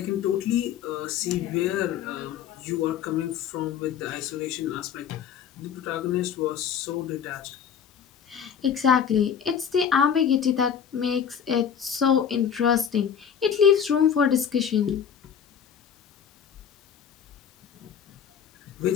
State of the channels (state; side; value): quieter; right; 7.9 dB